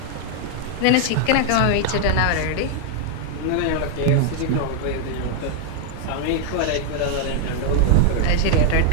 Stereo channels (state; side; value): different; both; correlation 0.00